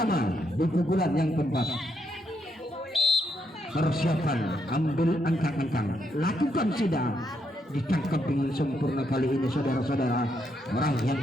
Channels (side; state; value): both; normal; correlation 0.78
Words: di pukulan yang keempat. Persiapan, ambil ancang-ancang, lakukan sudah, ditangkap dengan sempurna kali ini saudara-saudara. Orang yang